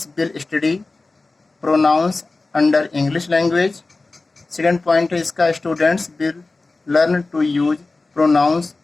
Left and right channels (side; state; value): right; quieter; 3.5 dB